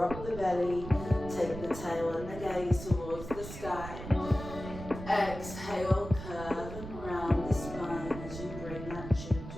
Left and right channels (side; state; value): right; noise; rumble, 10 dB below the sound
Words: the belly, take the tail and the gaze towards the sky. Exhale, curve and round the spine as you bring that chin